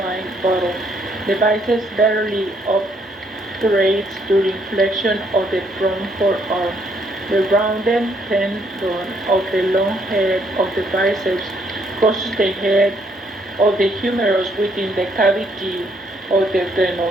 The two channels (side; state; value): both; normal; correlation 0.69